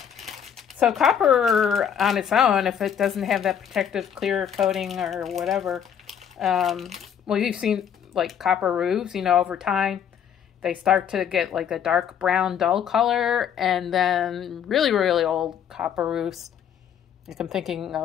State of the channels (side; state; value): right; quieter; 8.5 dB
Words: So copper on its own, if it doesn't have that protective clear coating or whatever, well, you've seen like copper roofs, you know, over time, they start to get like a dark brown dull color, and then really, really old copper roofs. Like I'm thinking